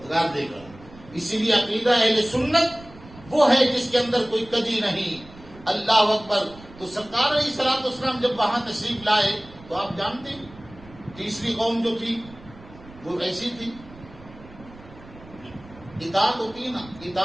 دے گا. اسی لیے عقیدہ اہل سنت وہ ہے جس کے اندر کوئی کجی نہیں. اللہ اکبر. تو سرکار علیہ الصلوۃ والسلام جب وہاں تشریف لائے تو آپ جانتے ہیں تیسری قوم جو تھی وہ ایسی تھی. اطاعت ہوتی ہے نا،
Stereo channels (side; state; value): right; noise; rumble, 20 dB below the sound